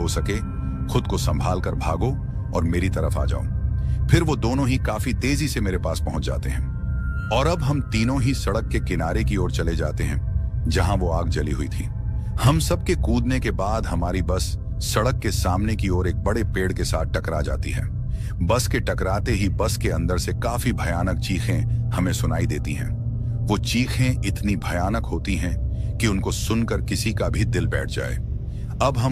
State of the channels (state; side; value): identical; both; correlation 1.00